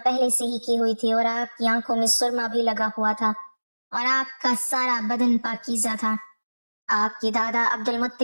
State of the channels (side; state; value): both; inverted; correlation -1.00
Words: پہلے سے ہی کی ہوئی تھی اور آپ کی آنکھوں میں سرما بھی لگا ہوا تھا اور آپ کا سارا بدن پاکیزہ تھا۔ آپ کے دادا عبد